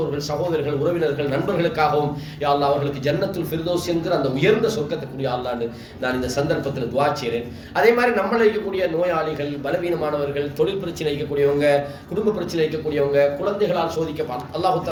சகோதரர்கள், உறவினர்கள், நண்பர்களுக்காகவும் யா அல்லாஹ் அவர்களுக்கு ஜன்னத்துல் ஃபிர்தௌஸ் என்கிற அந்த உயர்ந்த சொர்க்கத்துக்குரிய அல்லாஹ்னு நான் இந்த சந்தர்ப்பத்தில் துஆ செய்கிறேன். அதே மாதிரி நம்மளை இருக்கக்கூடிய நோயாளிகள், பலவீனமானவர்கள், தொழில் பிரச்சனை இருக்கக்கூடியவங்க, குடும்ப பிரச்சனை இருக்கக்கூடியவங்க, குழந்தைகளால் சோதிக்கப்பட்ட அல்லாஹ்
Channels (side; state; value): both; identical; correlation 1.00